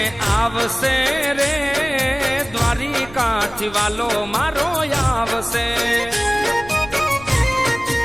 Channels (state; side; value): noise; right; rumble, 20 dB below the sound